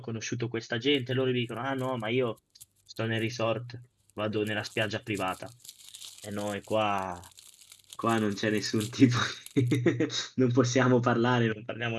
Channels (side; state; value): both; identical; correlation 1.00